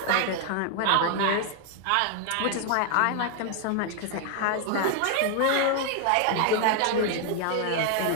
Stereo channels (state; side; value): different; both; correlation 0.00